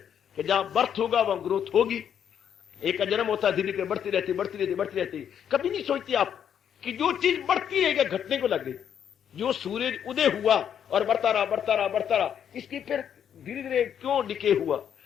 कि जहां बर्थ होगा वहां ग्रोथ होगी। एक का जन्म होता है, धीरे धीरे बढ़ती रहती बढ़ती रहती बढ़ती रहती। कभी नहीं सोचती आप कि जो चीज बढ़ती है घटने को लग गई। जो सूरज उदय हुआ और बढ़ता रहा बढ़ता रहा बढ़ता रहा, इसकी फिर धीरे धीरे क्यों डिके हुआ,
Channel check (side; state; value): right; quieter; 8.8 dB